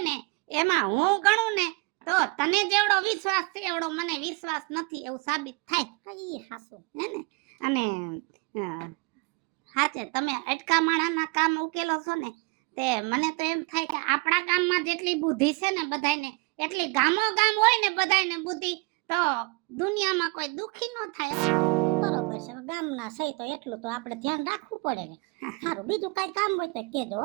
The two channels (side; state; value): left; quieter; 29.1 dB